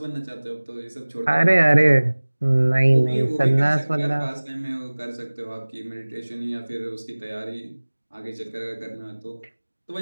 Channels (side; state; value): both; inverted; correlation -1.00